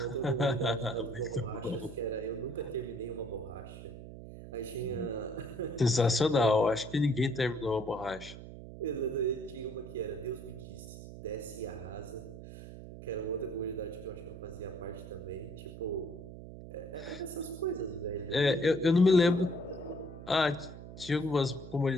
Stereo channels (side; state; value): right; noise; hum, 13 dB below the sound